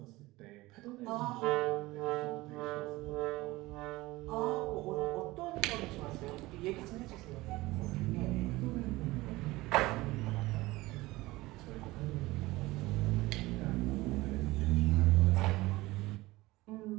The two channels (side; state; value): left; quieter; 19.6 dB